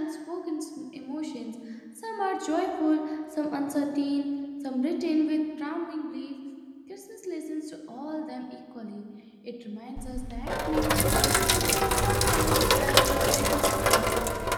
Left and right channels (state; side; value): identical; both; correlation 1.00